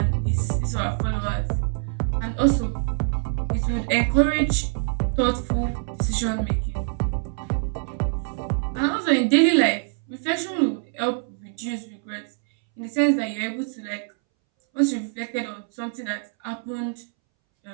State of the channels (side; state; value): left; silent; 62 dB below the other